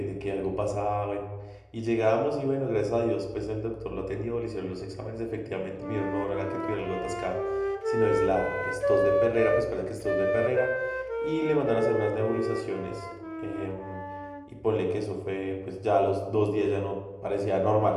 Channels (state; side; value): identical; both; correlation 1.00